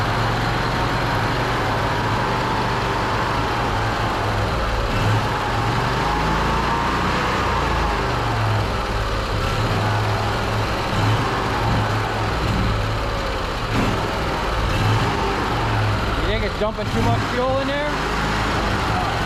You think it's dumping too much fuel in there?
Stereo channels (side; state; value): both; identical; correlation 1.00